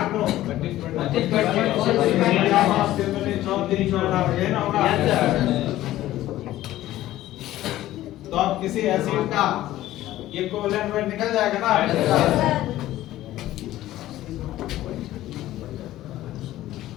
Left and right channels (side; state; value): right; quieter; 14.7 dB